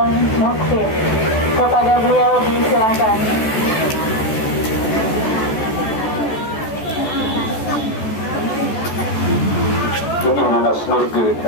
Mukhsin. Kepada beliau disilakan.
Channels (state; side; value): late; right; 14 ms